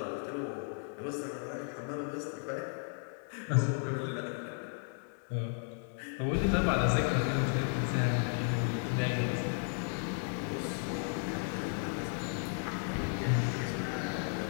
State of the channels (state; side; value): silent; right; 55 dB below the other